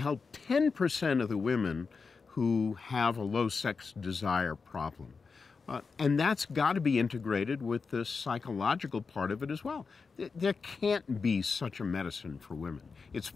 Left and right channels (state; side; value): quieter; right; 4.9 dB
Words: 10% of the women who have a low sex desire problem. And that's got to be integrated with the psychological part of it as well. There can't be such a medicine for women. It's